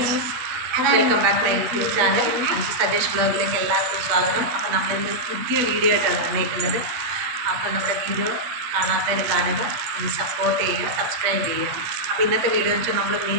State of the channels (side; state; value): left; late; 8.2 ms